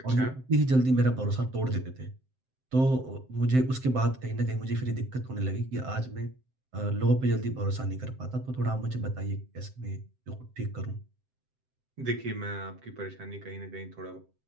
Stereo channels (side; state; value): left; late; 7.7 ms